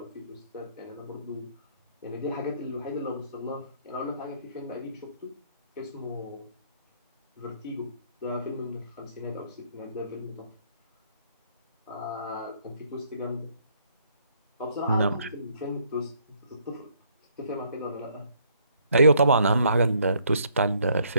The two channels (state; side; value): inverted; both; correlation -0.66